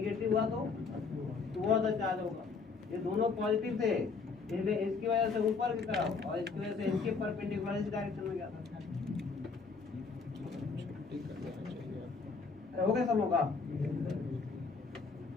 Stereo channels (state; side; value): quieter; right; 4.8 dB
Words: हुआ तो टुवर्ड द चार्ज होगा। ये दोनों पॉजिटिव थे इसलिए इसकी वजह से ऊपर की तरफ और इसकी वजह से इसके परपेंडिकुलर इस डायरेक्शन में गया था। हो गया सब लोगों का?